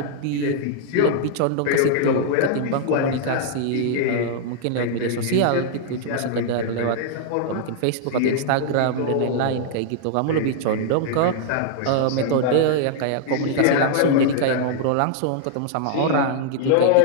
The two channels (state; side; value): different; both; correlation -0.01